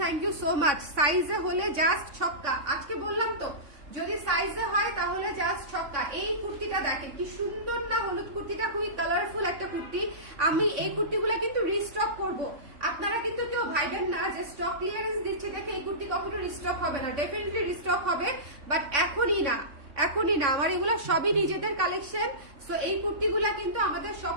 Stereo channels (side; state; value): left; late; 3.5 ms